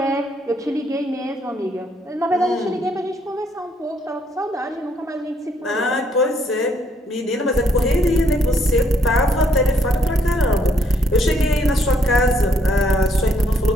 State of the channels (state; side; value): normal; both; correlation 0.70